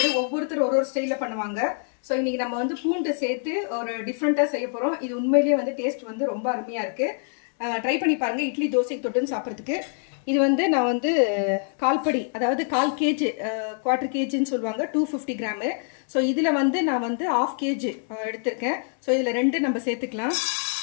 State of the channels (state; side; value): silent; right; 59 dB below the other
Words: ஒவ்வொருத்தர் ஒரு ஸ்டைல்ல பண்ணுவாங்க. சோ இன்னைக்கு நம்ம வந்து பூண்டு சேர்த்து ஒரு டிஃபரண்டா செய்ய போறோம். இது உண்மையிலேயே வந்து டேஸ்ட் வந்து ரொம்ப அருமையா இருக்கு. ட்ரை பண்ணி பாருங்க இட்லி தோசைக்கு தொட்டுன்னு சாப்பிடுறதுக்கு. இது வந்து நான் வந்து கால்படி அதாவது 1/4 kg quarter kgன்னு சொல்வாங்க 250 கிராம். சோ இதுல வந்து நான் வந்து 1/2 kg எடுத்துர்க்கேன். சோ இதுல ரெண்டு நம்ம சேர்த்துக்கலாம்.